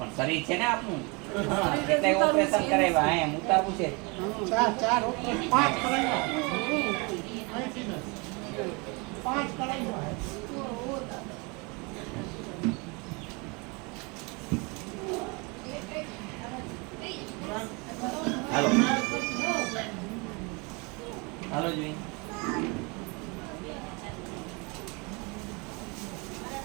શરીર છે ને આપનું, એટલે ઓપરેશન કરાવ્યા એમ ઉતારવું છે. ચાર પાંચ કરાવ્યા. પાંચ કરાવ્યા. હાલો હાલો જોઈ.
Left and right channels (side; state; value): left; quieter; 29.5 dB